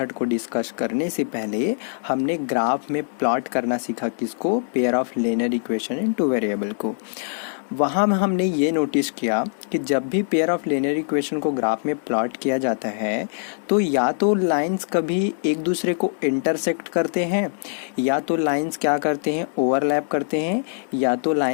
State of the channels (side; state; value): right; silent; digital silence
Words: को discuss करने से पहले हमने graph में प्लॉट करना सीखा. किसको? Pair of linear equation in two variable को. वहाँ हमने ये नोटिस किया कि जब भी पेयर ऑफ लिनियर इक्वेशन को ग्राफ में प्लॉट किया जाता है तो या तो लाइंस कभी एक दूसरे को इंटरसेक्ट करते हैं, या तो लाइंस क्या करते हैं, ओवरलैप करते हैं, या तो